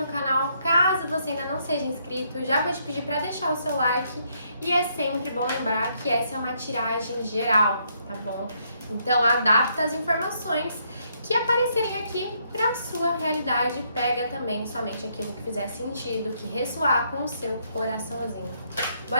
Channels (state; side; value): inverted; both; correlation -0.73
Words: canal. Caso você ainda não seja inscrito, já vou te pedir para deixar o seu like. E é sempre bom lembrar que essa é uma tiragem geral, tá bom? Então adapta as informações que aparecerem aqui para a sua realidade. Pega também somente aquilo que fizer sentido, que ressoar com o seu coraçãozinho.